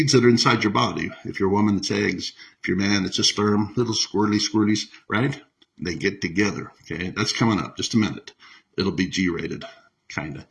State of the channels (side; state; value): both; identical; correlation 1.00